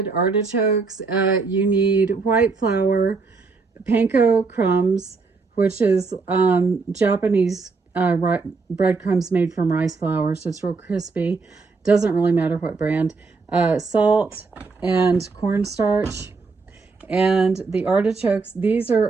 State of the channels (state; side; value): quieter; left; 4.3 dB